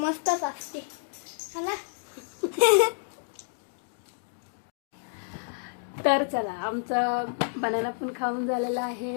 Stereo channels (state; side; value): silent; right; digital silence